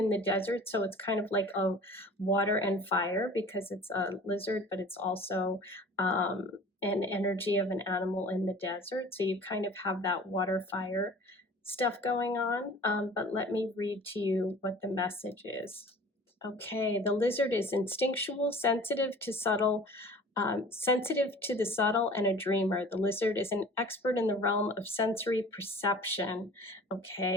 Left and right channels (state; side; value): normal; both; correlation 0.45